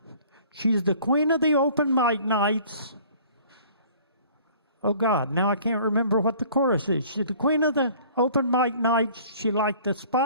she's the queen of the open mic nights. Oh, God, now I can't remember what the chorus is. She's the queen of the open mic nights. She liked the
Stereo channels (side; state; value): both; inverted; correlation -0.51